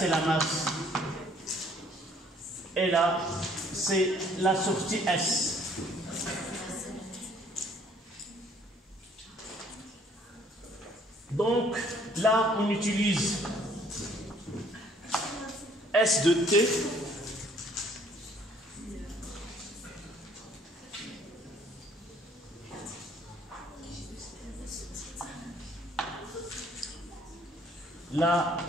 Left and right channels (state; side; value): normal; both; correlation 0.60